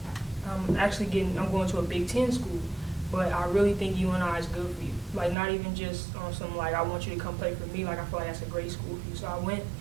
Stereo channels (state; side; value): drops out; left; at 5.4 s